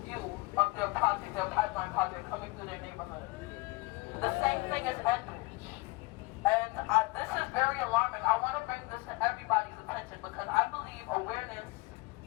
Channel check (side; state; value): right; quieter; 24.6 dB